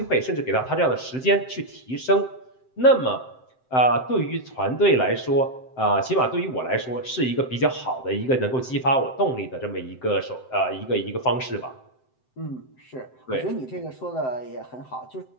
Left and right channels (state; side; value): late; right; 7.8 ms